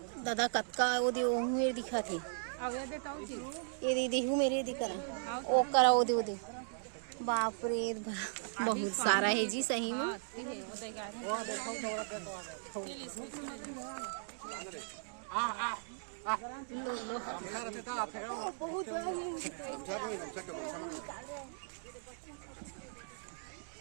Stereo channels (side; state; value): left; silent; digital silence